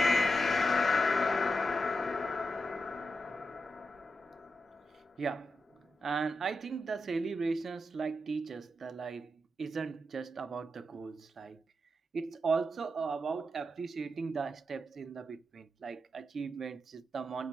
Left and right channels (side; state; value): both; normal; correlation 0.87